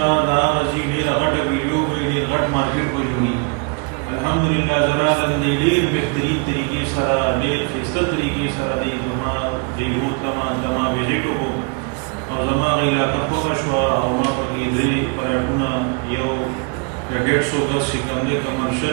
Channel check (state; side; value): quieter; left; 32.8 dB